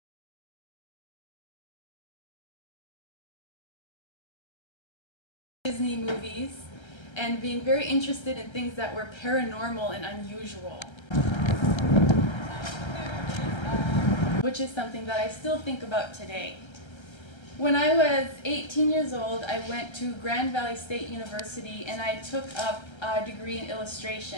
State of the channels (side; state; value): right; late; 1.3 ms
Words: Disney movies, and being very interested in things that were paranormal and unusual, which is something that I still think about today. When I was 18 years old, I went to Grand Valley State University and I took up a degree in